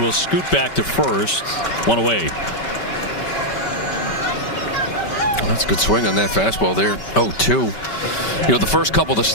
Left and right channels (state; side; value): late; right; 5.2 ms